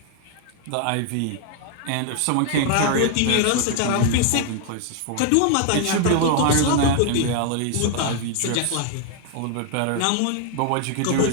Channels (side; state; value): both; different; correlation 0.00